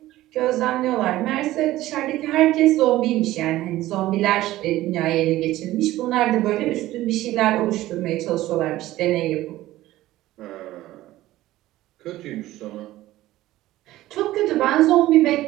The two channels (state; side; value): quieter; left; 15.9 dB